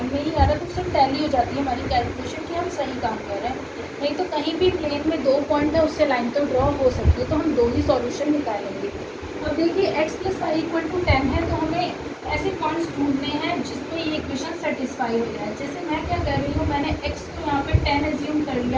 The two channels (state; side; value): identical; both; correlation 1.00